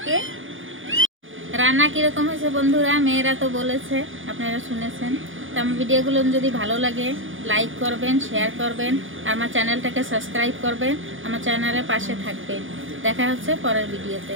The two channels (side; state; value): left; late; 0.58 ms